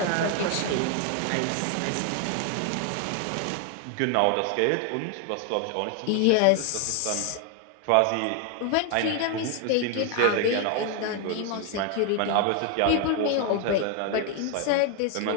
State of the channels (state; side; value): different; both; correlation 0.01